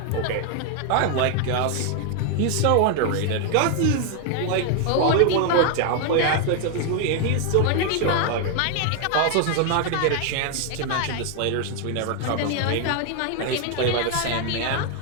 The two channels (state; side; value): different; both; correlation 0.00